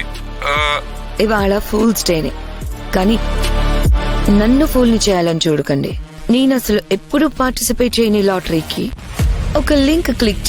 ఇవాళ ఫూల్స్ డేనే, కానీ నన్ను ఫూల్ని చేయాలని చూడకండి. నేను అసలు ఎప్పుడు పార్టిసిపేట్ చేయని లాటరీకి ఒక లింక్ క్లిక్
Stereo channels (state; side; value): identical; both; correlation 1.00